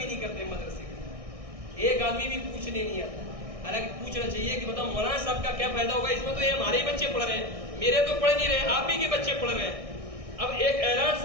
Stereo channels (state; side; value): late; left; 1.6 ms